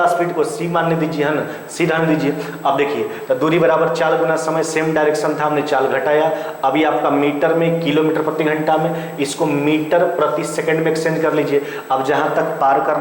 स्पीड को सी मानने दीजिए, है ना, सी ढाल दीजिए। अब देखिए तो दूरी बराबर चाल गुना समय, सेम डायरेक्शन था, हमने चाल घटाया। अभी आपका मीटर में किलोमीटर प्रति घंटा में, इसको मीटर प्रति सेकंड में एक्सचेंज कर लीजिए। अब जहां तक पार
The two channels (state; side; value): identical; both; correlation 1.00